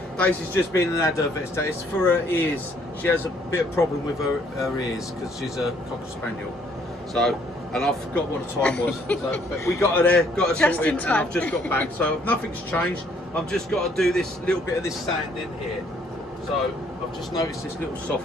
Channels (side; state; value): both; normal; correlation 0.65